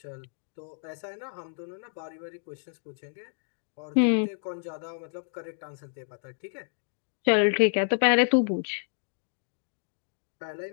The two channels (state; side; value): silent; right; digital silence